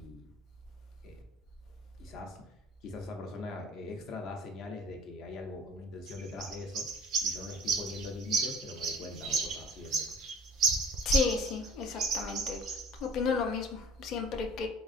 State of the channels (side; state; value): both; normal; correlation 0.48